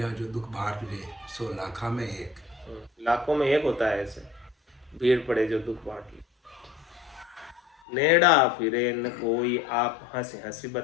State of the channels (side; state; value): right; drops out; at 7.8 s